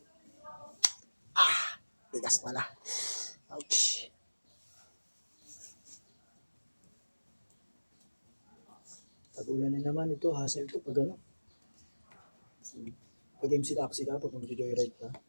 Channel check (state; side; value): inverted; both; correlation -1.00